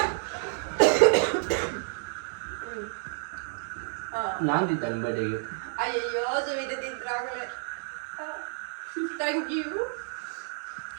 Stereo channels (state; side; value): silent; left; 58 dB below the other